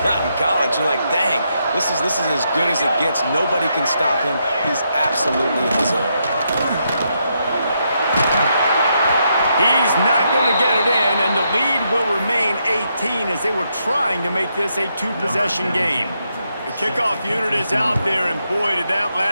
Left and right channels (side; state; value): both; inverted; correlation -0.80